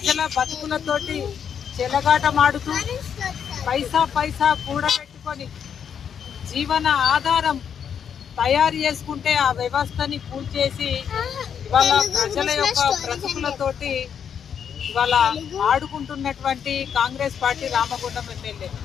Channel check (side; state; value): right; quieter; 7.9 dB